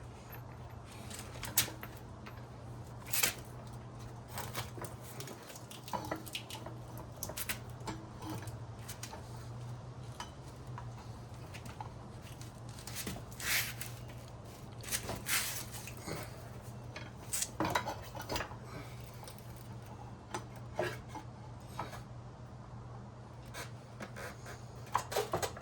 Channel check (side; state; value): both; identical; correlation 1.00